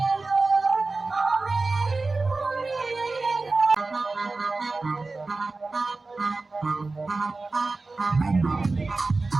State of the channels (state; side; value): quieter; left; 3.6 dB